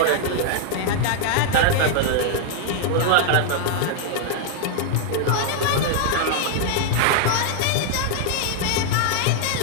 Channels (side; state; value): both; different; correlation -0.01